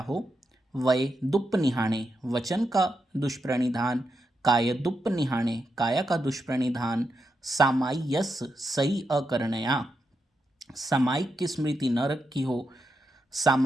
वय दुप्प निहाणे, वचन का दुष्प्रणिधान। काय दुप्प निहाणे, काया का दुष्प्रणिधान। सामाय्यस सही अकरणया, सामायिक की स्मृति न रखी हो।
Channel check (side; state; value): both; normal; correlation 0.85